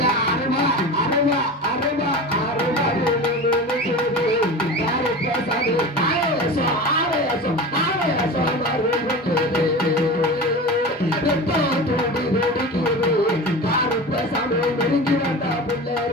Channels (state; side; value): normal; both; correlation 0.31